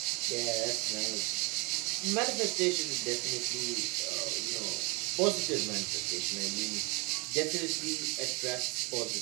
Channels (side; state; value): left; quieter; 28.9 dB